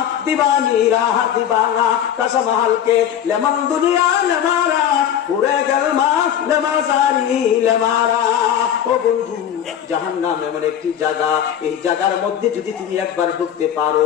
দিবানীরা দিবানা, কসম হালকে লেমন দুনিয়া লেমারা, পুরে গলমা লেমাসারি লেমারা। ও বন্ধু, জাহান্নাম এমন একটি জায়গা, এই জায়গার মধ্যে যদি তুমি একবার ঢুকতে পারো,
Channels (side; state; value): right; quieter; 9.8 dB